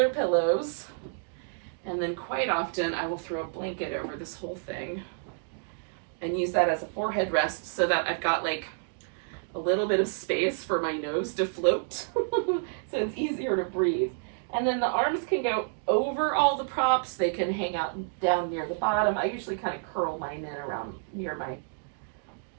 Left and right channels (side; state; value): left; silent; digital silence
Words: pillows. And then quite often I will throw a blanket over this whole thing and use that as a forehead rest so that I've got like a little bit of space for my nose to float. So it's easier to breathe. And then the arms can go over all the props. They can hang out down near the bottom. I usually kind of curl mine in around near my